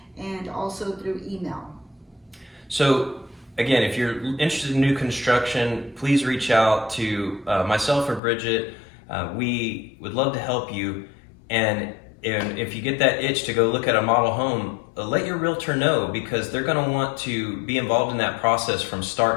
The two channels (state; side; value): drops out; right; at 8.2 s